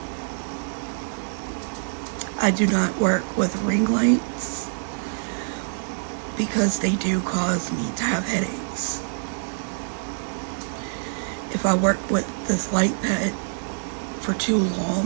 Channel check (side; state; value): left; silent; 61 dB below the other